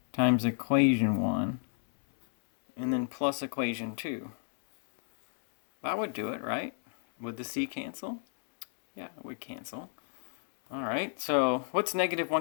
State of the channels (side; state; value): right; silent; digital silence